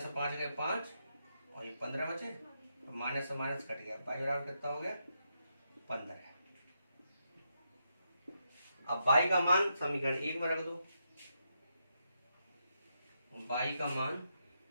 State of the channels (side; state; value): both; inverted; correlation -0.82